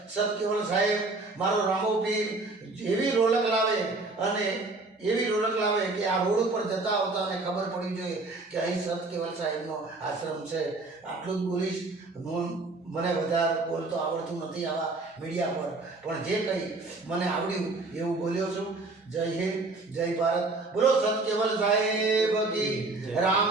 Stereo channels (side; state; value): left; quieter; 3.4 dB